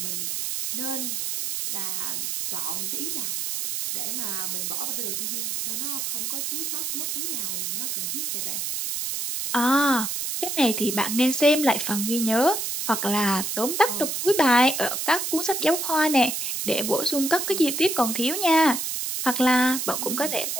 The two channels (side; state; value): right; noise; hiss, 2 dB below the sound